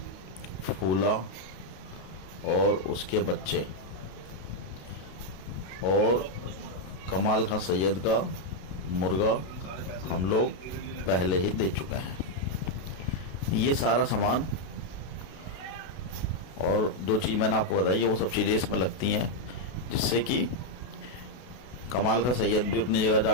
फूला और उसके बच्चे और कमाल खां सैयद का मुर्गा हम लोग पहले ही दे चुके हैं। ये सारा सामान और जो चीज़ मैंने आपको बताई है वो सब चीज़ें इसमें लगती हैं, जिससे कि कमाल का सैयद भी अपनी जगह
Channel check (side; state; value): right; late; 32 ms